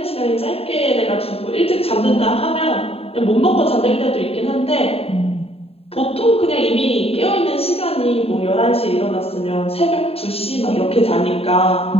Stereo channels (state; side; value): late; right; 0.28 ms